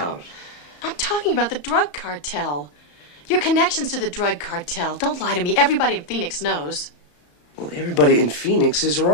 I'm talking about the drug cartel. Your connections to the drug cartel. Don't lie to me. Everybody in Phoenix knows. Well, everybody in Phoenix is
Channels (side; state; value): right; late; 34 ms